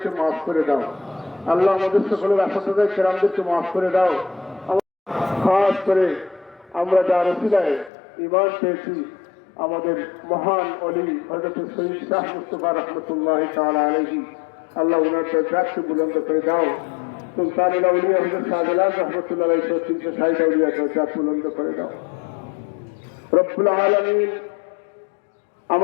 মাফ করে দাও আল্লাহ, আমাদের সকলের আসাদায় কেরামদেরকে মাফ করে দাও। খাস করে আমরা যার ওসিলায় ঈমান পেয়েছি আমাদের মহান ওলি হযরত সৈয়দ শাহ মুস্তাফা রাহমাতুল্লাহি তাআলা আলাইহি, আল্লাহ ওনার দরজাকে বুলন্দ করে দাও। সুলতানুল আউলিয়া হযরত শাহজালাল রাহমাতুল্লাহ আলাইহি তিনশো 60 আউলিয়া দরজা বুলন্দ করে দাও রব্বুল আলামিন।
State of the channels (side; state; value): right; drops out; at 7.9 s